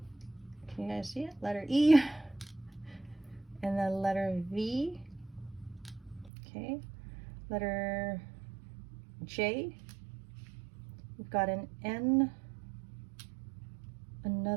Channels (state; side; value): drops out; left; at 6.3 s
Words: can you guys see it? Letter E, and then letter V, okay? Letter J, we've got an N,